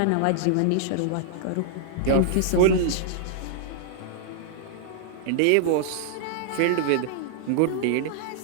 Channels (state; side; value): different; both; correlation -0.01